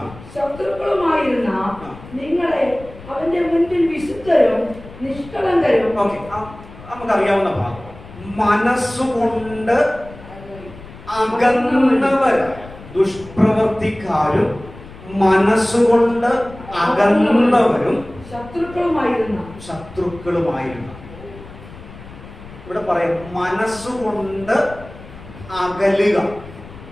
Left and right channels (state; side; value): noise; left; rumble, 17 dB below the sound